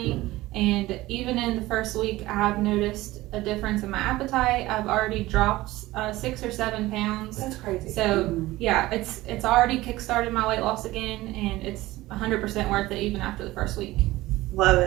And even in the first week, I've noticed a difference in my appetite. I've already dropped 6 or 7 pounds. That's crazy. So yeah, it's already kickstarted my weight loss again, and it's 100% worth it even after the first week. Love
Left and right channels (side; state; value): left; quieter; 18.0 dB